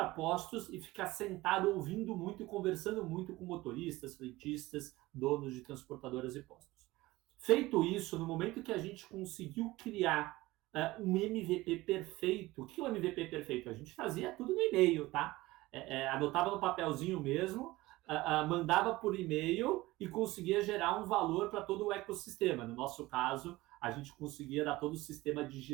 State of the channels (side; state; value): left; quieter; 19.1 dB